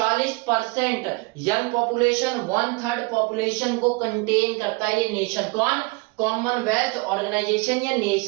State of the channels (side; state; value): left; quieter; 27.1 dB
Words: यंग पॉपुलेशन, 1/3 पॉपुलेशन को कंटेन करता है ये नेशन। कौन, कॉमनवेल्थ ऑर्गेनाइजेशन या